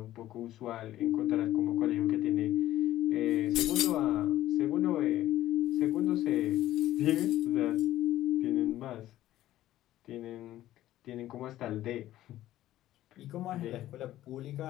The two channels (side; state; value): right; quieter; 14.1 dB